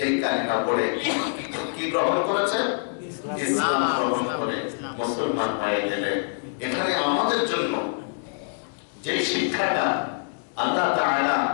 কালিমা পড়ে কি গ্রহণ করেছেন? ইসলাম গ্রহণ করে মুসলমান হয়ে গেলেন। এখানে আমাদের জন্য যে শিক্ষাটা আল্লাহ তাআলা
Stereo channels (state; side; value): silent; right; digital silence